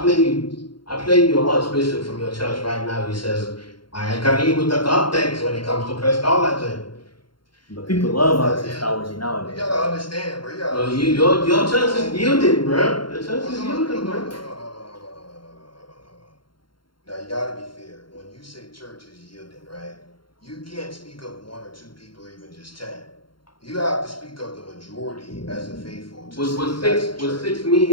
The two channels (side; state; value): right; late; 0.73 ms